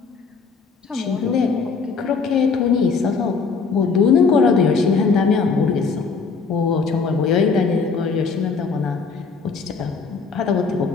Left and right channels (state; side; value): quieter; right; 4.9 dB